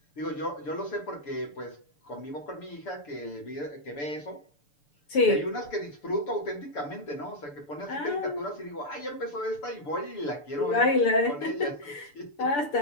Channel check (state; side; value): late; right; 6.9 ms